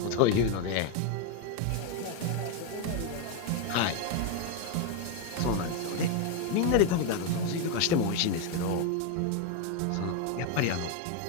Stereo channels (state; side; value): different; both; correlation 0.01